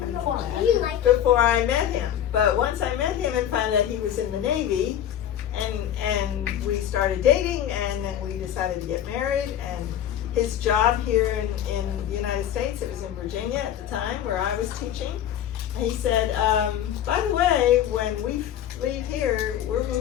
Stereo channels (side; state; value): right; quieter; 10.7 dB